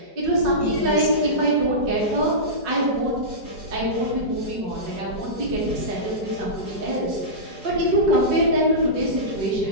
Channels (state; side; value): late; left; 4.8 ms